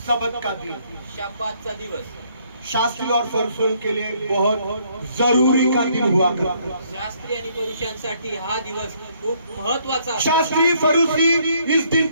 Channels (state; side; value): inverted; both; correlation -0.67